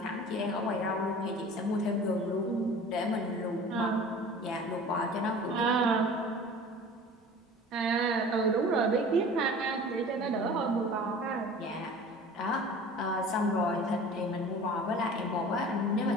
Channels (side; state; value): both; normal; correlation 0.42